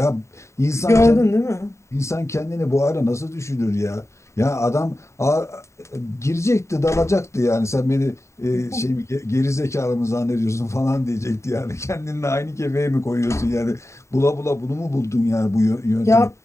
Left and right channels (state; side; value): late; right; 0.14 ms